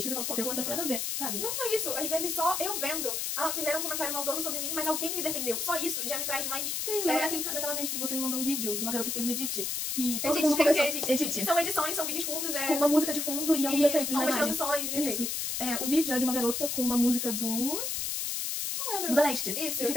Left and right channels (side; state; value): left; noise; hiss, 1 dB below the sound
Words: que você fala, pô, aquele comentário não foi nada a ver, sabe? Não só isso, às vezes só eu vendo, fizeram um comentário maldoso sobre mim, mas alguém me defendeu. Só isso já me traz mais... Sim, daquela vez que você me mandou um vídeo de uma garota que fez um edit, que todo Edit, mundo começou... edit. São edições, são vídeos curtos, com uma música de fundo e alguns efeitos na algumas imagem. transições e Isso. efeitos. O vídeo era de uma garota com uma música Não lembro. do Da Leste. Isso. E